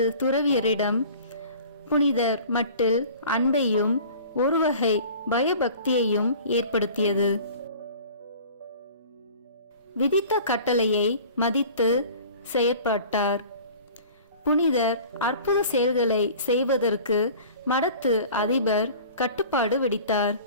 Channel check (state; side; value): inverted; both; correlation -0.44